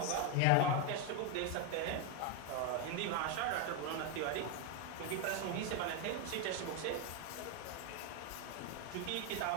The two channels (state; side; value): different; both; correlation 0.01